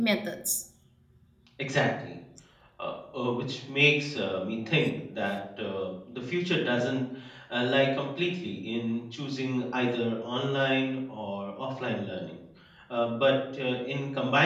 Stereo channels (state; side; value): identical; both; correlation 1.00